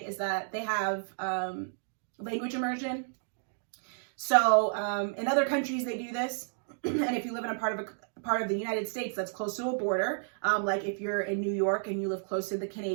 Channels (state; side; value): silent; left; digital silence